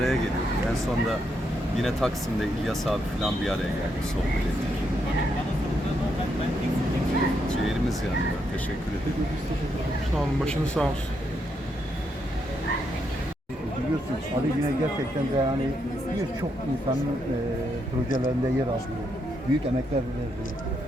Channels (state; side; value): normal; both; correlation 0.79